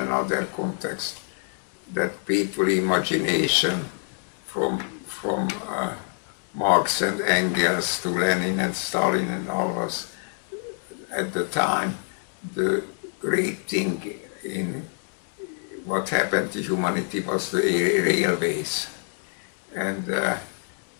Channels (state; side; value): silent; right; 56 dB below the other